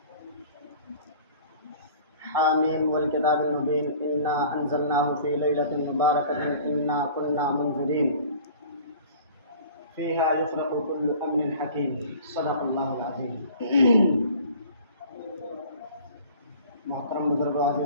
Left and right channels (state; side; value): inverted; both; correlation -0.46